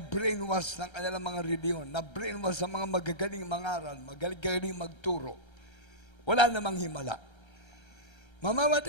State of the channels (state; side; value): late; right; 1.3 ms